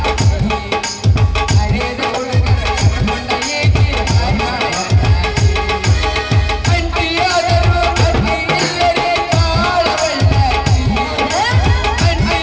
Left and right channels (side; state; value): both; identical; correlation 1.00